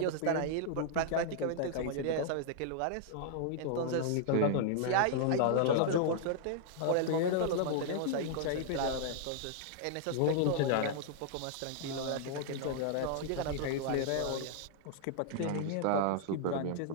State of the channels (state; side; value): different; both; correlation -0.01